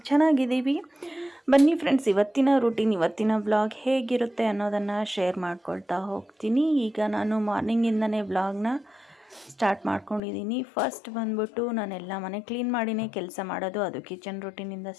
ಚೆನ್ನಾಗಿದ್ದೀವಿ. ಬನ್ನಿ ಫ್ರೆಂಡ್ಸ್, ಇವತ್ತಿನ ರೂಟೀನ್, ಇವತ್ತಿನ ಬ್ಲಾಗ್ ಹೇಗಿರುತ್ತೆ ಅನ್ನೋದನ್ನು ಶೇರ್ ಮಾಡ್ಕೊಳ್ತಾ ಹೋಗ್ತೀನಿ. ಈಗ ನಾನು ಮಾರ್ನಿಂಗಿಂದನೇ ಬ್ಲಾಗ್ನ ಸ್ಟಾರ್ಟ್ ಮಾಡ್ಕೊಂಡಿದ್ದೀನಿ. ಫಸ್ಟ್ ಬಂದ್ಬಿಟ್ಟು ನಾನೆಲ್ಲ ಮನೆ ಕ್ಲೀನ್ ಮಾಡಿನೇ ಕೆಲಸ ಮಾಡೋದು, ಅದು ಕಿಚನ್ ರೂಟೀನಿಂದ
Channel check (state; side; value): drops out; right; at 10.2 s